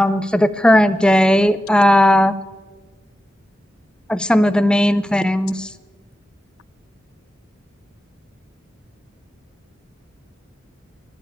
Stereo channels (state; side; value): normal; both; correlation 0.91